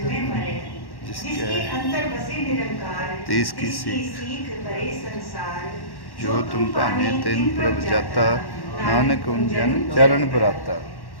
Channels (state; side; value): late; right; 1.1 ms